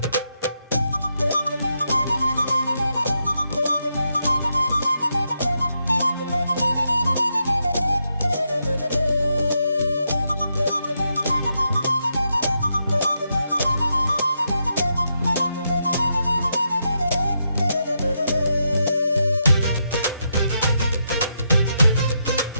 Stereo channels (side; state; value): both; inverted; correlation -0.82